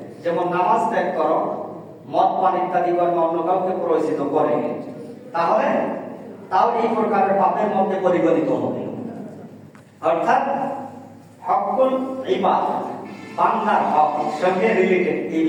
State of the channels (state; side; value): identical; both; correlation 1.00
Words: যেমন নামাজ ত্যাগ করো, মদ পান ইত্যাদি কর্মে অন্য কাউকে প্ররোচিত করে, তাহলে তাও এই প্রকারের পাপের মধ্যে পরিগণিত হবে। অর্থাৎ হকুল ইবাদ, বান্দার হক সঙ্গে রিলেটেড এই